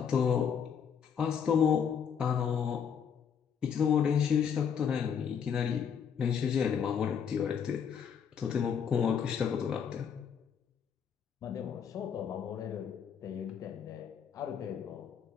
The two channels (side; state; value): right; quieter; 7.4 dB